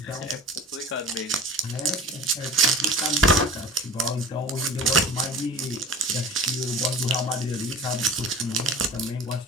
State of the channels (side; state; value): both; normal; correlation 0.39